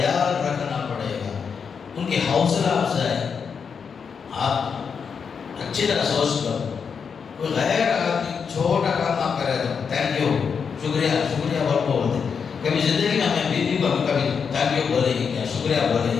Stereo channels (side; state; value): right; quieter; 6.2 dB